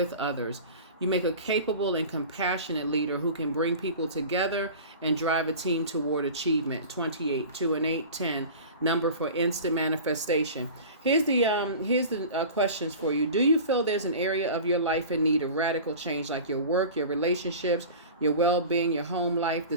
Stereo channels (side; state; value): both; inverted; correlation -0.37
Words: others. You make a capable and compassionate leader who can bring people together and drive a team toward achievement. 28, 2 and 8, 10, number for instant manifestation. Here's the questions for you. Do you feel there's an area of your life in need of radical change, like your work, your relationships, your well-being, your home life? The